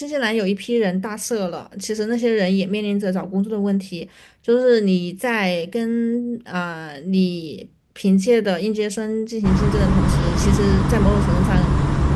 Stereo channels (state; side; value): identical; both; correlation 1.00